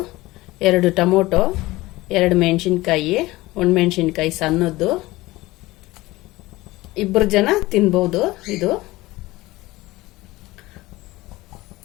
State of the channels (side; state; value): right; quieter; 19.3 dB